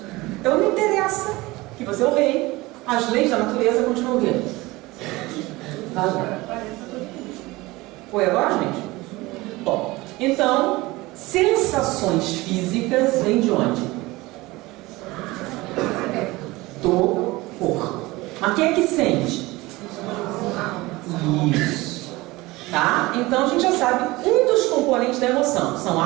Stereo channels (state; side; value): quieter; left; 20.9 dB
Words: Então não interessa que você é o rei, as leis da natureza continuam vindo. Foi agora, gente? Bom, então, sensações físicas vêm de onde? Do corpo. Mas quem é que sente? Isso. Tá? Então a gente já sabe, um dos componentes da emoção são